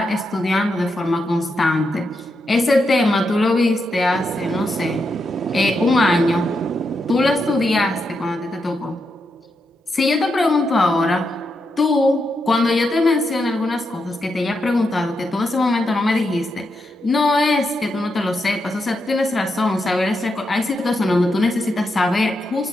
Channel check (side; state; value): both; normal; correlation 0.84